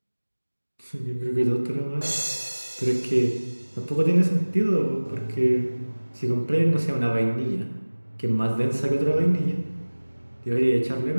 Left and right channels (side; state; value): both; inverted; correlation -1.00